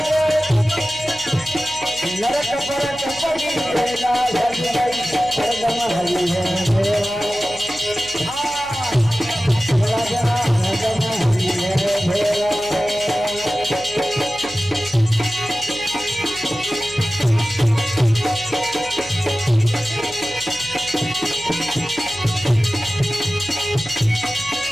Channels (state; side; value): noise; left; hum, 20 dB below the sound